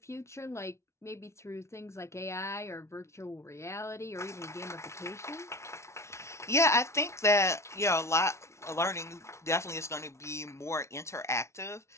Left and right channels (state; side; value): late; right; 0.13 ms